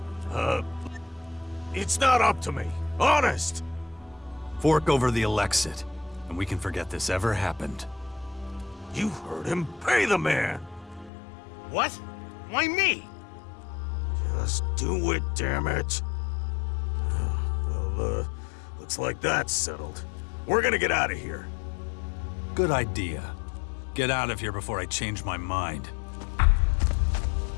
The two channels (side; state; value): right; drops out; at 11.1 s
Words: It's not up to me. Honest. Fork over the Elexit, and we can forget this ever happened. You heard him. Pay the man. What? Why me? Just do it, damn it. Well, looks like that's settled. We're gonna get out of here. Good idea. Get out of here before I change my mind.